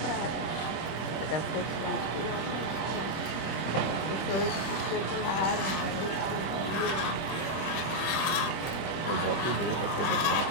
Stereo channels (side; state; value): right; late; 26 ms